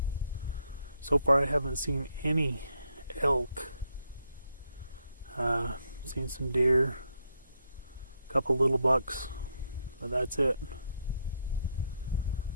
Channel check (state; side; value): inverted; both; correlation -0.77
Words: So far I haven't seen any elk. Seen some deer, a couple little bucks, but that's it.